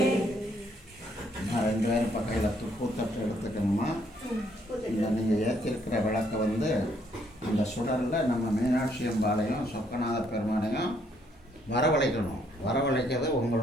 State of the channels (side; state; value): both; normal; correlation 0.69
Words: ரெண்டு பேரும் பக்கையில் துப்புத்தட்டு எடுத்துக்கணுமா. இந்த நீங்கள் ஏற்றிருக்கிற விளக்கை அந்த சுடரில் நம்ம மீனாட்சி அம்பாளையும் சொக்கநாத பெருமானையும் வரவழைக்கணும். வரவழைக்கிறது